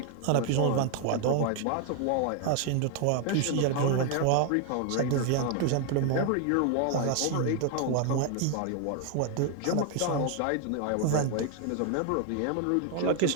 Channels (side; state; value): both; different; correlation 0.00